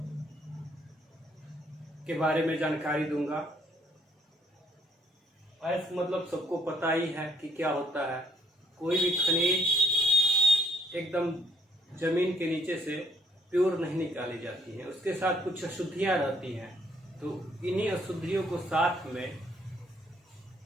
के बारे में जानकारी दूंगा। अयस्क मतलब सबको पता ही है कि क्या होता है। कोई भी खनिज एकदम जमीन के नीचे से प्योर नहीं निकाली जाती है, उसके साथ कुछ अशुद्धियाँ रहती हैं। तो इन्हीं अशुद्धियों को साथ में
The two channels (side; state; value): both; normal; correlation 0.67